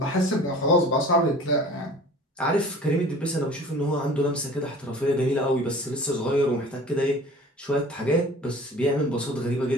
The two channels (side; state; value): both; normal; correlation 0.44